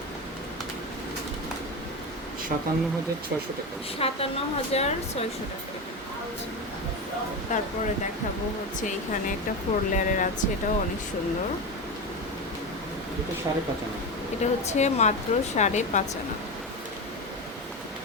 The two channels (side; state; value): both; normal; correlation 0.19